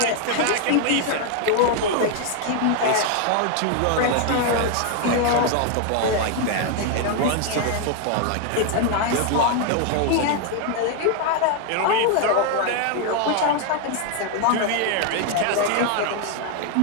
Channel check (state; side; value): different; both; correlation 0.00